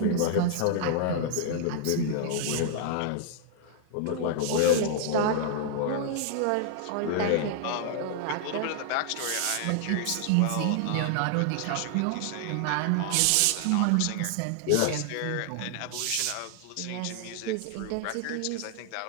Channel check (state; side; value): different; both; correlation 0.00